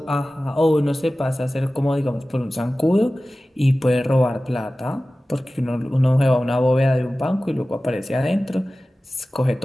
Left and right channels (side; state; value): both; normal; correlation 0.96